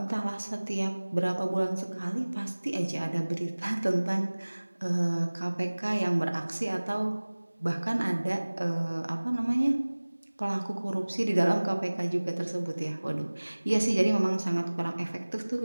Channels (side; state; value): both; inverted; correlation -1.00